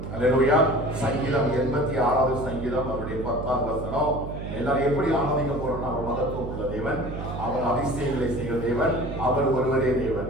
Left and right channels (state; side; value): noise; right; hum, 7 dB below the sound